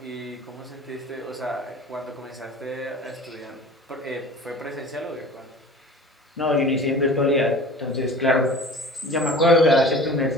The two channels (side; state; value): both; normal; correlation 0.40